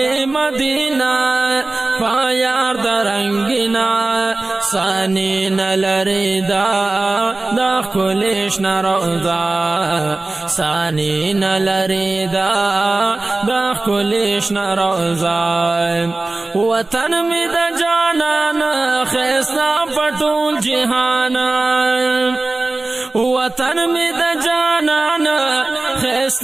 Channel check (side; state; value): left; quieter; 3.1 dB